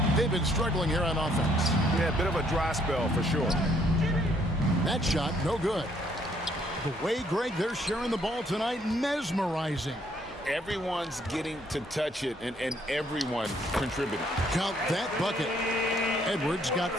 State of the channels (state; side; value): normal; both; correlation 0.67